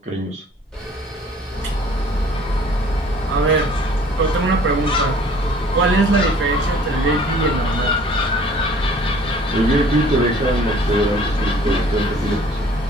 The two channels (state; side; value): normal; both; correlation 0.53